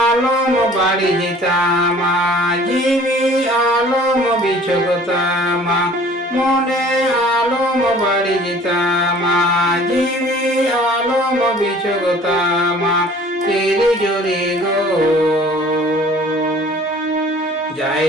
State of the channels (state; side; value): normal; both; correlation 0.50